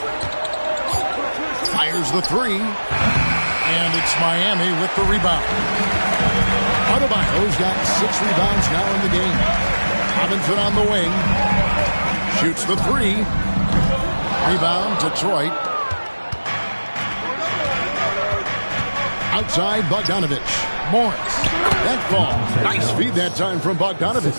Fires the 3. And it's Miami with the rebound. Adebayo's got 6 rebounds now in the game. Robinson on the wing. Shoots the 3. Rebound, Detroit. Outside, Bogdanovich. Morris. That ball. Nice feed that time from Bogdanovich.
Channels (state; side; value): inverted; both; correlation -1.00